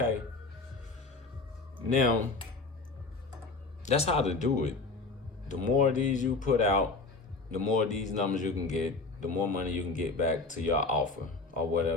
Now, that's how to do it. The more of these you put out, the more of these numbers you can get, the more money you can get back to your offer or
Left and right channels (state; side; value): quieter; right; 3.7 dB